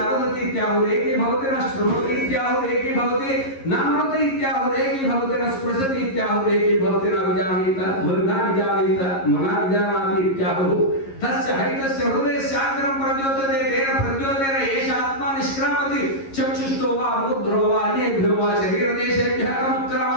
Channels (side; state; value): right; late; 11 ms